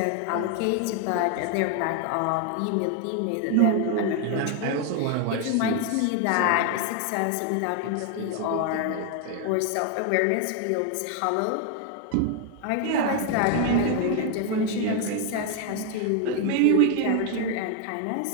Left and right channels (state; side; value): different; both; correlation 0.01